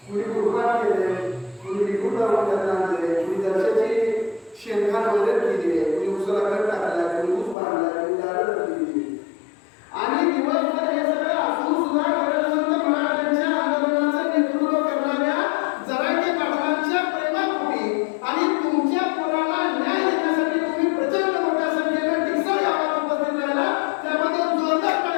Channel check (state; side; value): drops out; right; at 7.6 s